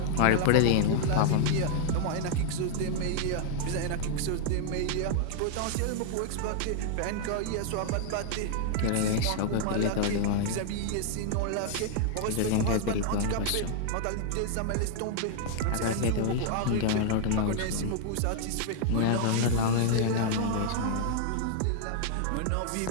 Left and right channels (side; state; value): both; different; correlation -0.01